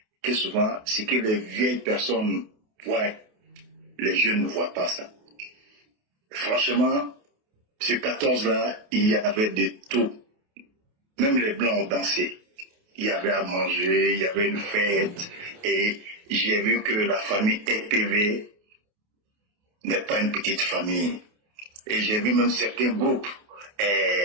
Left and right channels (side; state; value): left; late; 28 ms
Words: que souvent, ce que les vieilles personnes voient, les jeunes ne voient pas ça. Franchement, ce 14-là, il y avait de tout. Même les Blancs ont dansé. Il y avait à manger, il y avait une fête. Et j'ai vu que la famille EPV n'est pas une petite famille. Et j'ai vu même certains groupes